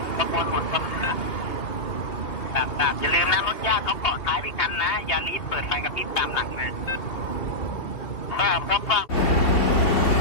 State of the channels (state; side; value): late; right; 2.7 ms